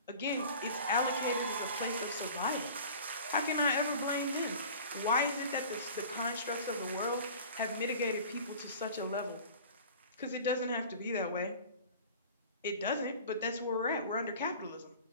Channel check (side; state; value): both; inverted; correlation -0.42